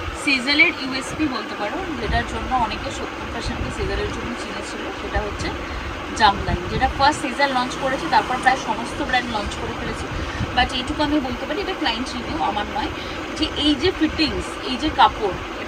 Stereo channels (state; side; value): identical; both; correlation 1.00